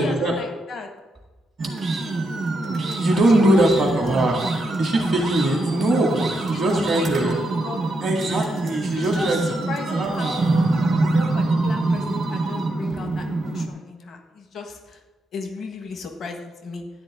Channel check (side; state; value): both; normal; correlation 0.82